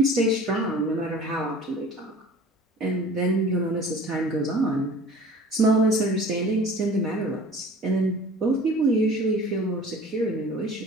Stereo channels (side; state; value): both; normal; correlation 0.44